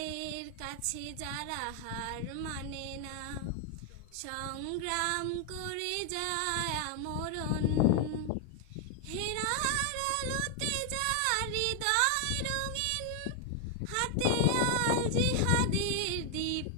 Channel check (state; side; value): different; both; correlation 0.00